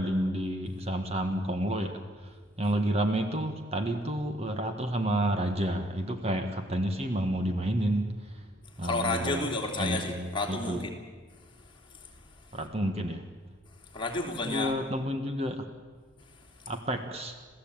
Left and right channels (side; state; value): both; normal; correlation 0.62